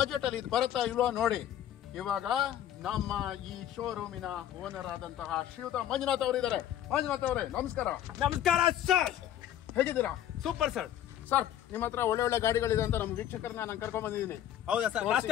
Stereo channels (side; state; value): right; quieter; 11.3 dB